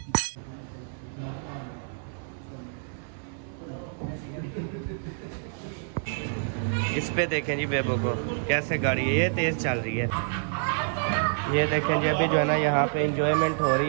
इस पे देखें जी बेबो को कैसे गाड़ी है ये तेज़ चल रही है। ये देखें जी अभी जो है ना यहाँ पे इंजॉयमेंट हो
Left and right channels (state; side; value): silent; left; 59 dB below the other